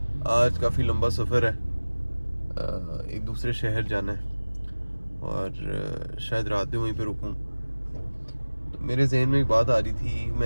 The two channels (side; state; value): both; inverted; correlation -1.00